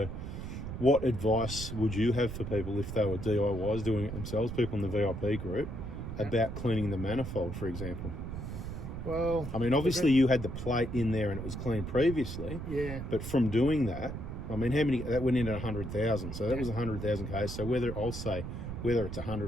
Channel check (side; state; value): right; noise; rumble, 6 dB below the sound